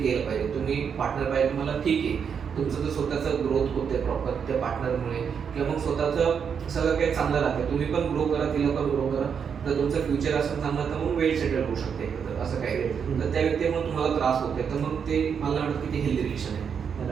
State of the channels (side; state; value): left; quieter; 7.0 dB